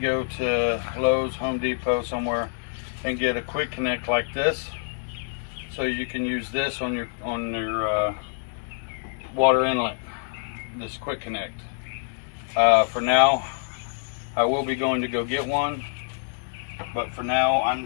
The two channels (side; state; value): right; silent; digital silence